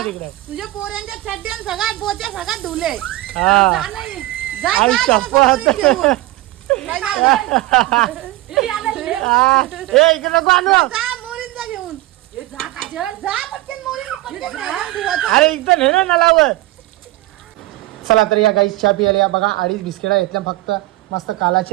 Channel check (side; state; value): left; quieter; 18.0 dB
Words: तिकडे. तुझ्या पोऱ्यांच्या चड्ड्यान सगळ्यात पोच्या सगळ्यात धुले. हा जा नाही. जा, आई जा, शपथ. जा, जा, घेऊन. जा, जा, हा. ए इकडे नको आणू. जा, मोरींचा घेऊन. जा पटकन मोरीन, पटकन धुवायचं. अरे इथं ने ना नलावर. चला तर या गाईस चहा पियाला या बघा. 2.5 बिस्किटा घेतल्या फक्त. मस्त